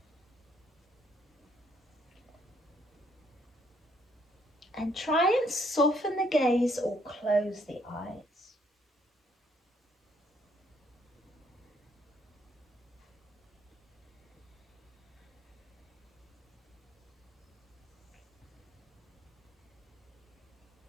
And try and soften the gaze or close the eyes.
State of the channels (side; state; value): both; normal; correlation 0.68